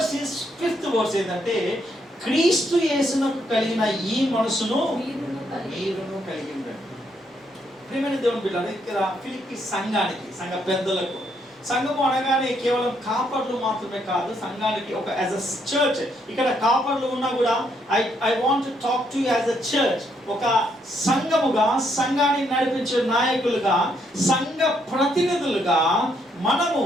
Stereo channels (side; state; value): both; normal; correlation 0.74